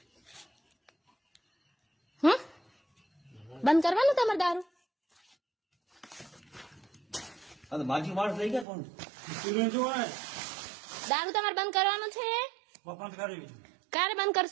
બંધ કરવાનું તમારે દારૂ? માજી માણસ લઈ ગયા કોણ? દારૂ તમારે બંધ કરવાનું છે? બંધ કરી. ક્યારે બંધ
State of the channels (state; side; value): drops out; left; at 8.7 s